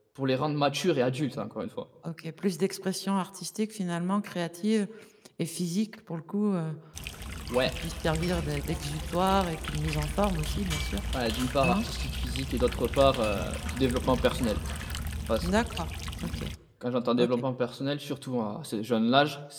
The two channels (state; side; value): identical; both; correlation 1.00